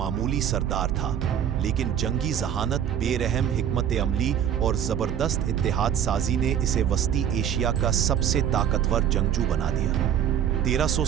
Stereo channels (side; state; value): left; quieter; 9.4 dB